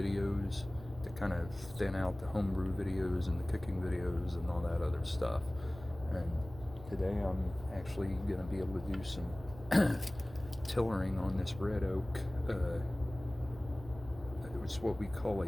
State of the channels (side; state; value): right; noise; rumble, 16 dB below the sound